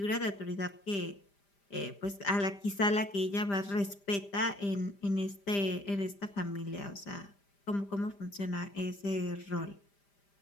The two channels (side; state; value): right; late; 5.0 ms